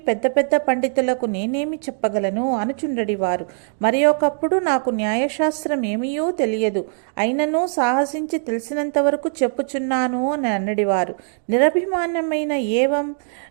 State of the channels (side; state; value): left; silent; digital silence